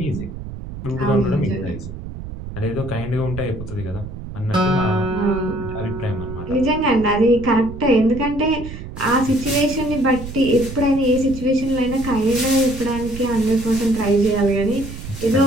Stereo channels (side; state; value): right; noise; rumble, 10 dB below the sound